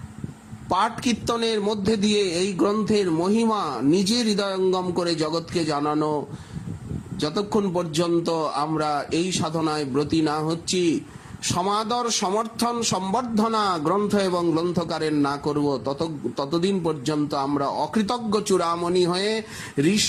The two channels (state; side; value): identical; both; correlation 1.00